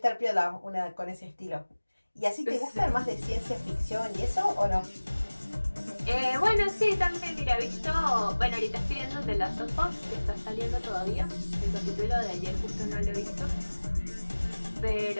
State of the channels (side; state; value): both; inverted; correlation -1.00